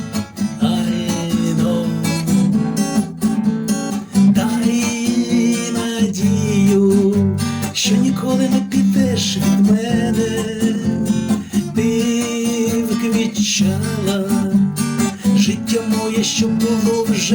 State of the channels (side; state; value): both; identical; correlation 1.00